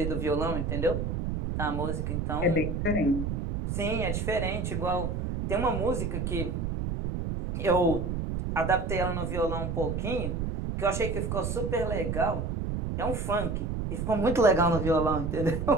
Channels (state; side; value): noise; right; rumble, 2 dB below the sound